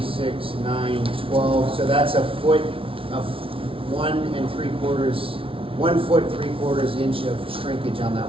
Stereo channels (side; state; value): left; late; 0.26 ms